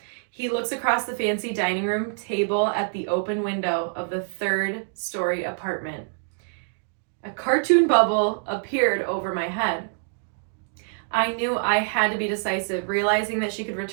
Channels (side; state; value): left; silent; digital silence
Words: He looks across the fancy dining room table at the open window of the 3rd-story apartment. A cartoon bubble appeared over my head. I knew I had to be decisive, realizing that she could